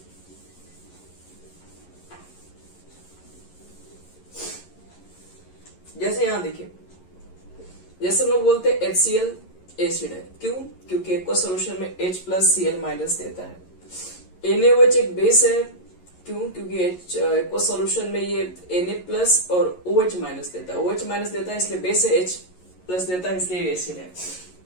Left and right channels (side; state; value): right; late; 11 ms